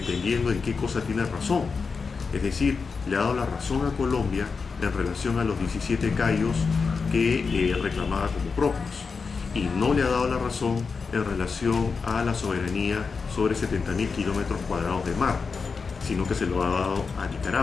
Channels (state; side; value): quieter; right; 5.0 dB